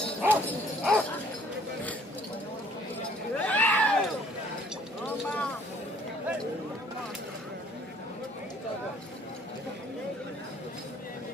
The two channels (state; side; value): normal; both; correlation 0.58